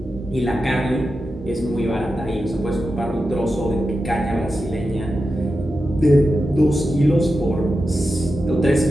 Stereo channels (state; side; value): normal; both; correlation 0.90